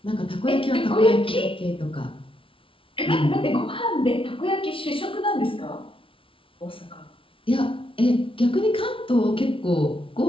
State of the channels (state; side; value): late; right; 0.25 ms